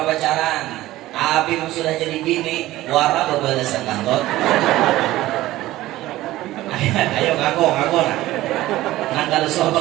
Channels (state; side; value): quieter; left; 16.3 dB